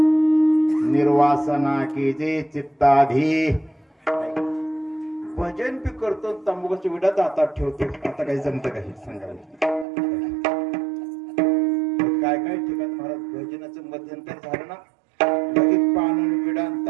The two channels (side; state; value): left; drops out; at 9.9 s